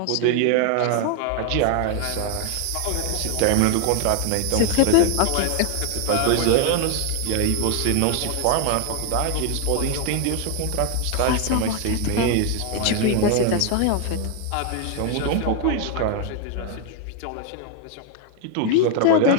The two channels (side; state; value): both; different; correlation 0.00